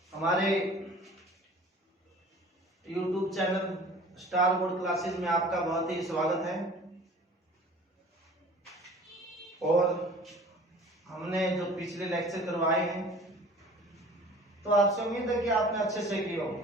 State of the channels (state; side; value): normal; both; correlation 0.46